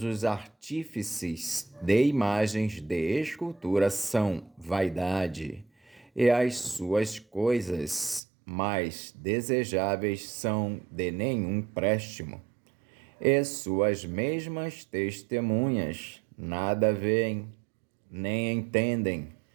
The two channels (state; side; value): drops out; left; at 8.2 s